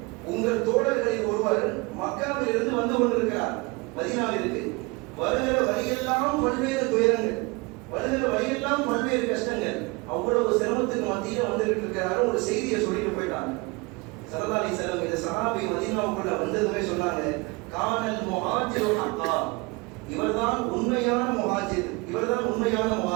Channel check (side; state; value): left; quieter; 26.3 dB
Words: உங்கள் தோழர்களில் ஒருவர் மக்காவில் இருந்து வந்து கொண்டிருக்கிறார் மதீனாவிற்கு. வருகிற வழியெல்லாம் பல்வேறு துயரங்கள், வருகிற வழியெல்லாம் பல்வேறு கஷ்டங்கள், அவ்வளவு சிரமத்துக்கு மத்தியில் வந்துகிட்டு இருக்கிறாரு. ஒரு செய்தியை சொல்லிட்டு போயிட்டாங்க. ஸல்லல்லாஹு அலைஹி வஸல்லம் இந்த சஹாபி மதீனாவுக்குள்ள வந்ததுமே சொன்னாங்க, கானல் முஹாஜிரு ஹக்கா, இவர்தான் உண்மையான முஹாஜிர், இவர்தான் உண்மையான